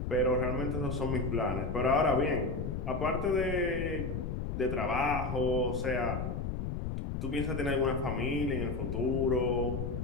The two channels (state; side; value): noise; left; rumble, 3 dB below the sound